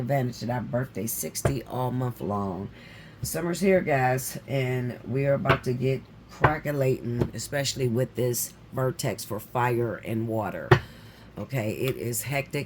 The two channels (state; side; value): identical; both; correlation 1.00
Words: of that birthday 60 all month long. Summer's here, guys, and we are about to get crackulating, especially with this vertex for fire and water. Okay, it is